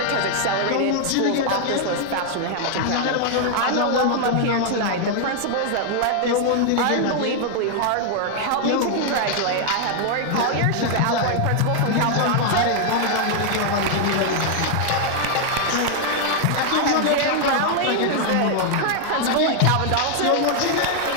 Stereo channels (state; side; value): different; both; correlation 0.00